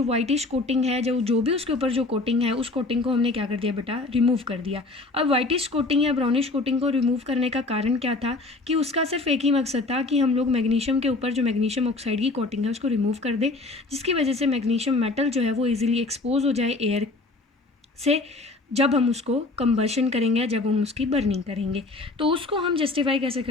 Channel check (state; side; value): quieter; right; 3.3 dB